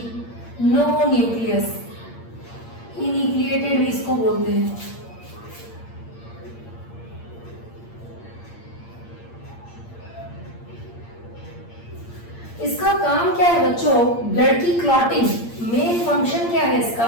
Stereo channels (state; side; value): late; right; 8.7 ms